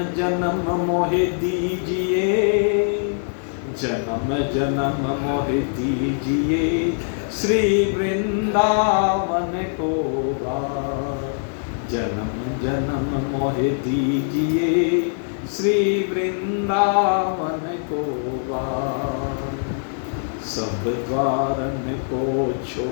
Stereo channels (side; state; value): right; silent; 64 dB below the other